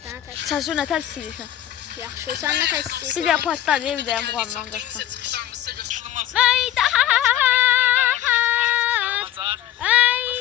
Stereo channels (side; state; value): right; quieter; 12.0 dB